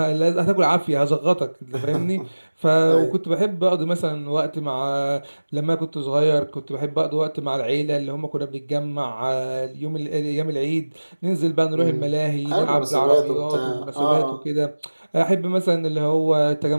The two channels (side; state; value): both; inverted; correlation -1.00